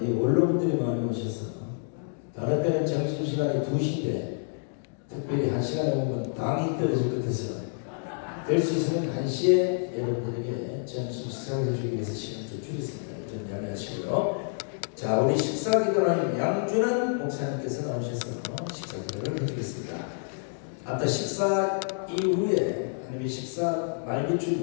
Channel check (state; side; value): silent; right; digital silence